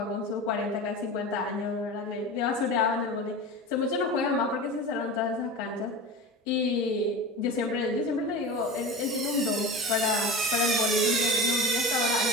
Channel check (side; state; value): both; normal; correlation 0.30